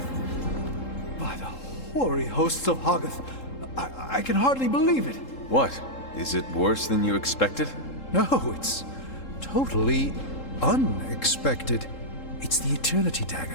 By the hoary hosts of Hoggoth, I can hardly believe it. What? Is it worse than you expected? No, it's totally unexpected. It's the Eternity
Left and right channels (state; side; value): late; right; 3.7 ms